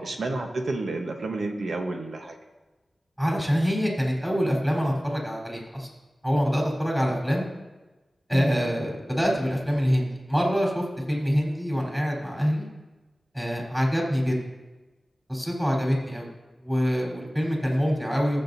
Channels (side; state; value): both; normal; correlation 0.97